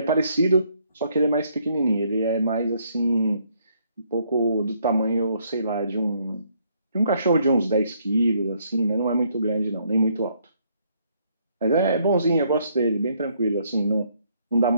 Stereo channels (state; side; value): inverted; both; correlation -0.69